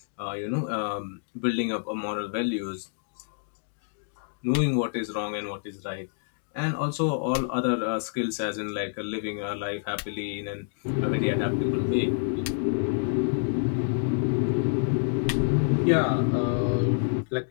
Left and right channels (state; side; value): silent; right; digital silence